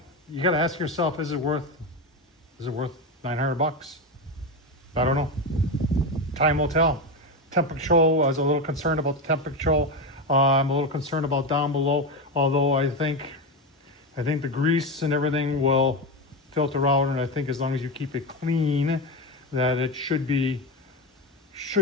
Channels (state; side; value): normal; both; correlation 0.16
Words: You gotta ask yourself, is it worth $900? I don't know. Time will tell. Temp control, I was a little concerned about the temp control. I'm a little concerned about down below, although I think the grease and everything will filter out, and I think as long as you keep it clean, that it should be,